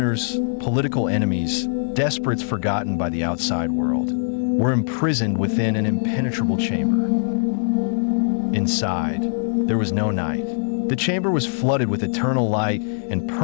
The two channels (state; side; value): silent; right; 58 dB below the other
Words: political enemies, desperates forgotten by the outside world, were imprisoned within an impenetrable chamber. Inside, there was no night. The chamber was flooded with eternal light and